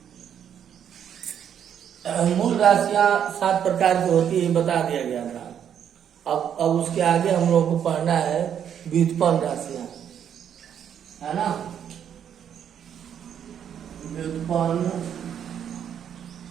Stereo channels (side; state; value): left; quieter; 8.9 dB